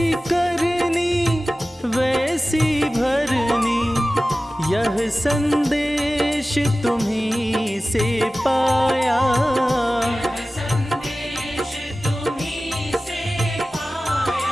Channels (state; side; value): normal; both; correlation 0.96